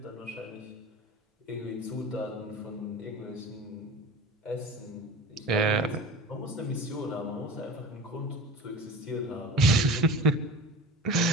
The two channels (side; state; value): both; normal; correlation 0.35